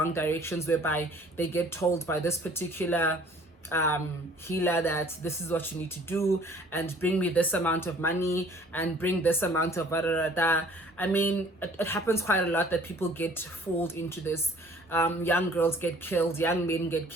directions, whereby they get told by this particular healer that this is what you need to do, and bring me this amount of money and bring this amount of I mean, it happens quite a lot that people get fooled into this. Young girls get killed, young men get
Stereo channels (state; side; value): normal; both; correlation 0.53